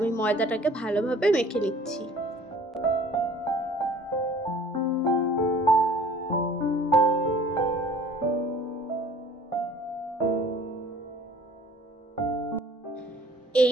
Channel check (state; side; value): normal; both; correlation 0.51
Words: ময়দাটাকে ভালোভাবে মেখে নিচ্ছি।